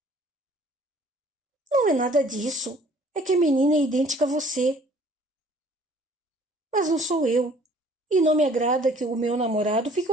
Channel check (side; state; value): both; normal; correlation 0.55